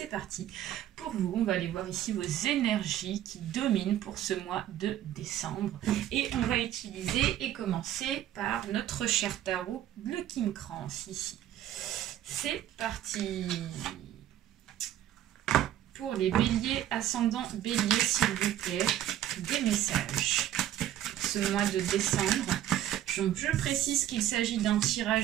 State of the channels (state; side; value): quieter; left; 12.2 dB